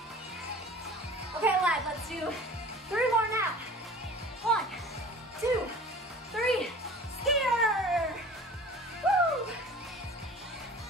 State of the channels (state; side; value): normal; both; correlation 0.42